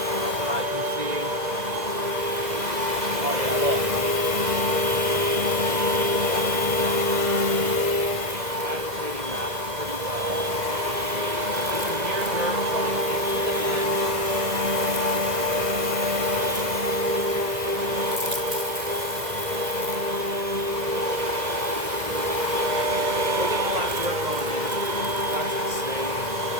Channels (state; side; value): late; left; 2.0 ms